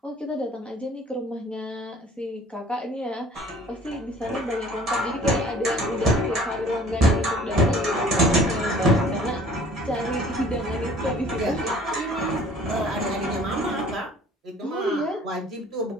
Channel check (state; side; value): normal; both; correlation 0.51